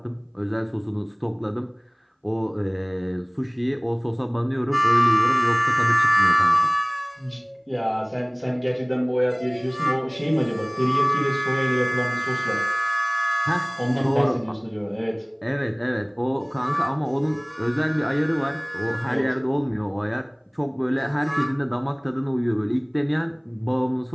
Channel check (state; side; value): identical; both; correlation 1.00